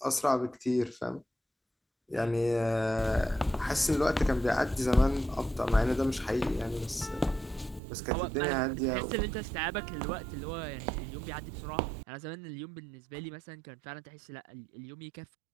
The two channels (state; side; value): drops out; left; at 7.8 s